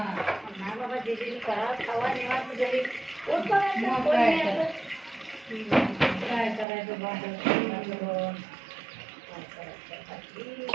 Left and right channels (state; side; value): drops out; left; at 6.7 s